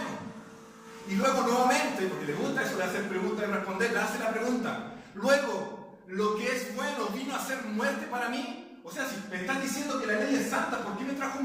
Y luego nuevamente, porque le gusta eso de hacer preguntas y responder, le hace la pregunta. Luego, ¿lo que es bueno vino a ser muerte para mí? O sea, si me estás diciendo que la ley es santa, ¿por qué me trajo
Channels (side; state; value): both; identical; correlation 1.00